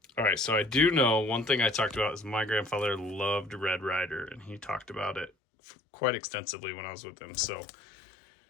all right, so I do know one thing I talked about is my grandfather loved Red Ryder, and he talked about it quite extensively when I was with him. So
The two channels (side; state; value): right; drops out; at 5.3 s